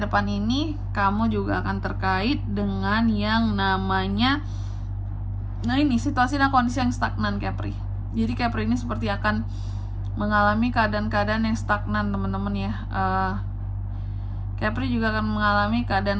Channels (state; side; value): identical; both; correlation 1.00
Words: ini kamu juga akan terkait dengan yang namanya, nah ini situasi dan kondisi yang stagnan Capri. Jadi Capri ini seperti akan mengalami keadaan-keadaan yang stagnan teman-teman ya. Capri juga akan mengalami